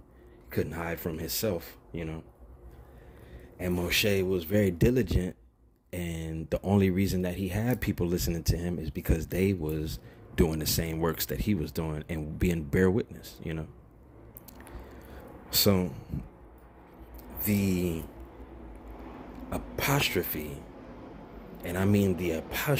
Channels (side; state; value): both; identical; correlation 1.00